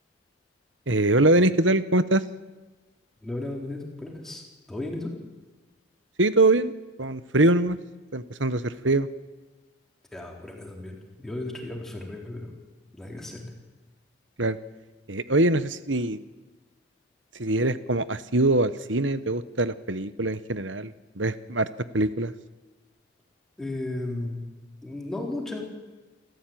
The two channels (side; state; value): both; normal; correlation 0.16